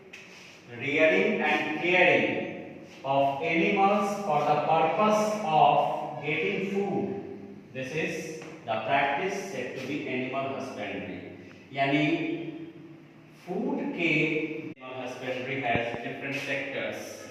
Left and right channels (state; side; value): identical; both; correlation 1.00